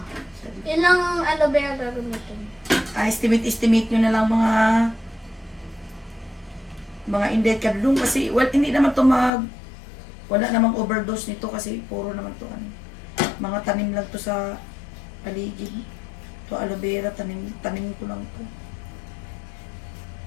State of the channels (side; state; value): right; drops out; at 9.3 s